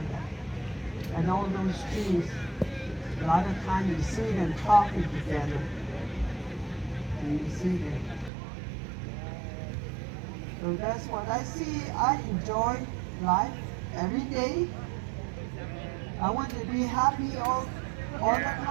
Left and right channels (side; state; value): left; drops out; at 8.3 s